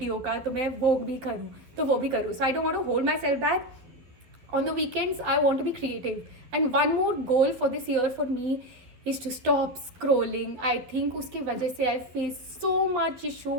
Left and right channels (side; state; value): left; late; 12 ms